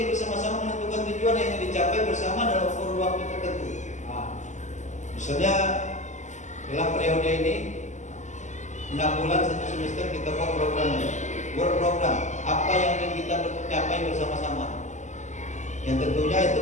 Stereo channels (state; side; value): late; right; 0.34 ms